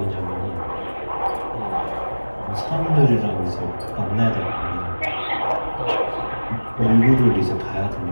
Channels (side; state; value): both; inverted; correlation -1.00